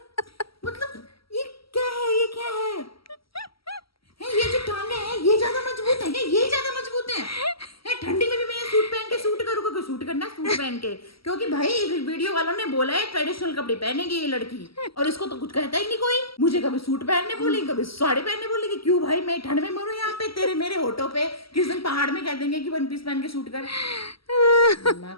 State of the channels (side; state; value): right; late; 0.75 ms